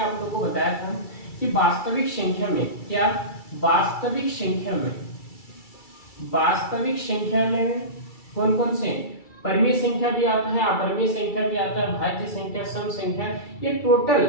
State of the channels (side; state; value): right; late; 2.3 ms